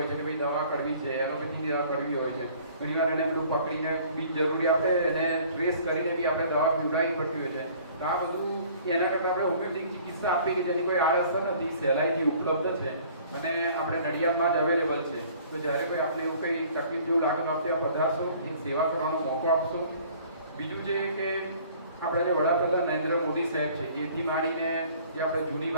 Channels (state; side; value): inverted; both; correlation -0.53